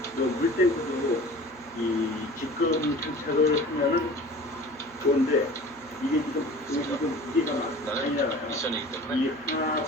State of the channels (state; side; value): noise; right; hum, 26 dB below the sound